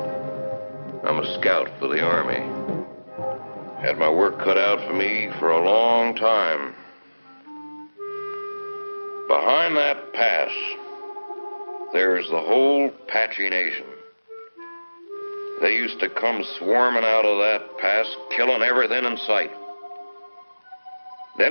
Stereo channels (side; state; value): both; inverted; correlation -1.00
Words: I'm a scout for the Army. Had my work cut out for me for a long time. Behind that pass, there's the whole Apache Nation. They used to come swarming out of that pass, killing everything in sight.